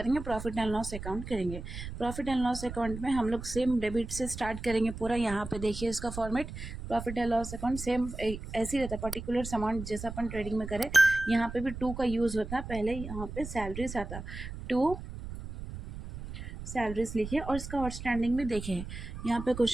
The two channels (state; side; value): noise; right; rumble, 9 dB below the sound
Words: प्रॉफिट एंड लॉस अकाउंट करेंगे। प्रॉफिट एंड लॉस अकाउंट में हम लोग सेम डेबिट से स्टार्ट करेंगे पूरा। यहाँ पे देखिए इसका format, profit and loss account same ऐसे ही रहता है, पर्टिकुलर अमाउंट जैसा अपन ट्रेडिंग में करें। यहाँ पे भी 2 का यूज़ होता है। पहले यहाँ पे सैलरीज आता, 2 सैलरीज लिखे और इसका आउटस्टैंडिंग भी देखे। यहाँ पे